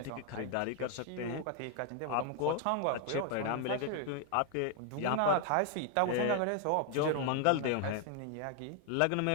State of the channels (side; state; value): both; different; correlation 0.00